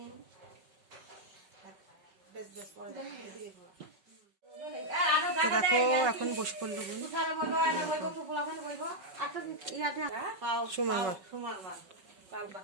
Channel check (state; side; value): late; left; 5.3 ms